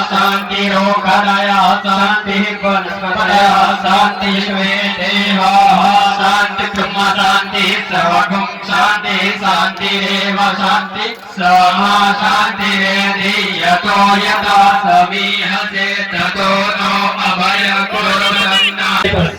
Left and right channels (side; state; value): both; identical; correlation 1.00